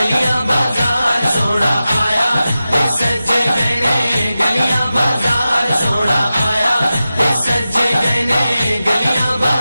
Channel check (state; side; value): inverted; both; correlation -0.93